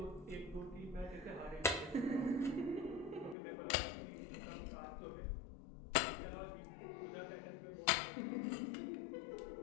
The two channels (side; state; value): right; drops out; at 3.4 s